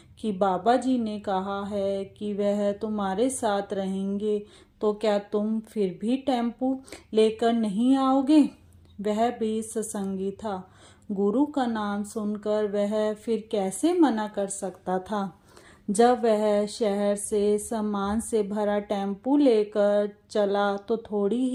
कि बाबा जी ने कहा है कि वह तुम्हारे साथ रहेंगे, तो क्या तुम फिर भी टेम्पू लेकर नहीं आओगे? वह भी सत्संगी था। गुरु का नाम सुनकर वह फिर कैसे मना कर सकता था। जब वह शहर से सामान से भरा टेम्पू लेकर चला तो थोड़ी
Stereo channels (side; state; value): both; identical; correlation 1.00